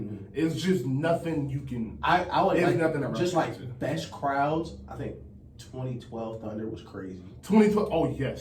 It's just nothing you can. I would it's like, nothing that just like it. Best crowds. I think 2012 Thunder was crazy. 2012. Oh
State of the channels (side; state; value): both; identical; correlation 1.00